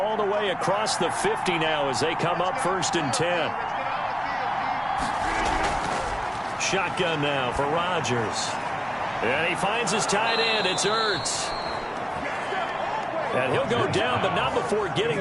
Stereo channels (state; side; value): identical; both; correlation 1.00